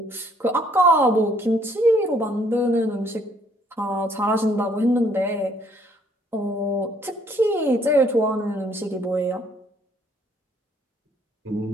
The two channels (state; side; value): normal; both; correlation 0.64